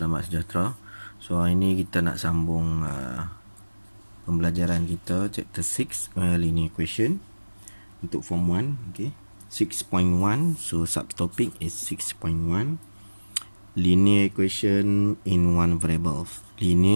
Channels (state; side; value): inverted; both; correlation -1.00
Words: sejahtera. So hari ini kita nak sambung pembelajaran kita chapter 6 linear equation untuk form 1. Okey, 6.1. So subtopic is 6.1, linear equation in one variable.